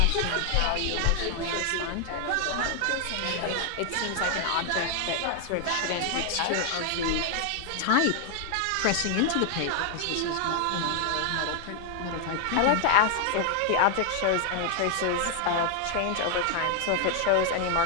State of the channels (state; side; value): different; both; correlation 0.00